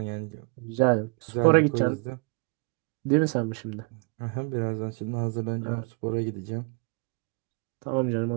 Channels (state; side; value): quieter; left; 32.3 dB